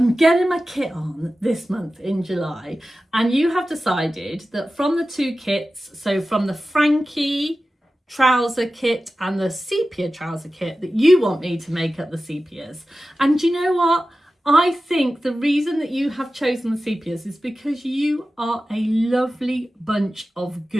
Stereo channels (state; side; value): normal; both; correlation 0.94